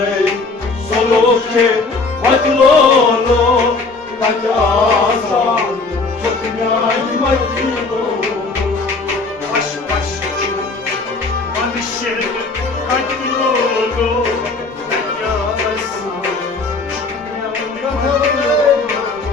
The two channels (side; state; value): right; quieter; 3.8 dB